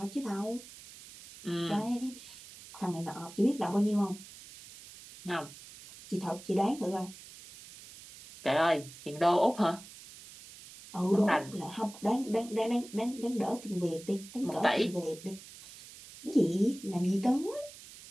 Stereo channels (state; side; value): noise; right; hiss, 17 dB below the sound